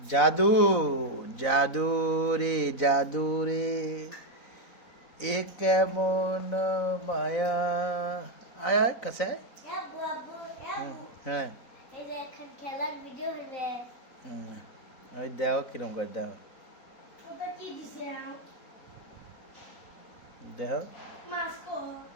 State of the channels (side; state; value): right; late; 4.0 ms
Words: জাদু রে জাদু রে এ কেমন মায়া আয় আয় কাছে হ্যাঁ ওই দেখো কিরম করে দেখো দেখো